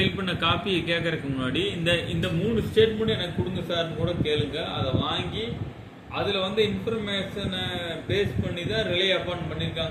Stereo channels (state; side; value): identical; both; correlation 1.00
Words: பண்ண காப்பியை கேட்கறதுக்கு முன்னாடி இந்த 3 ஸ்டேட்மெண்ட் எனக்கு கொடுங்க சார்னு கூட கேளுங்க. அதை வாங்கி அதில் இன்ஃபர்மேஷனை பேஸ் பண்ணி தான் ரிலே அப்பான்